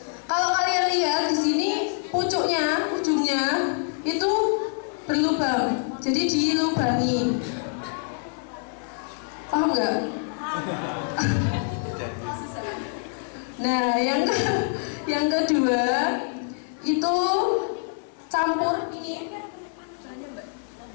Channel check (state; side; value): silent; right; 55 dB below the other